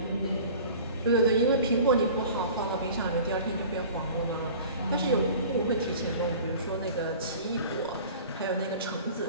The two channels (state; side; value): inverted; both; correlation -0.43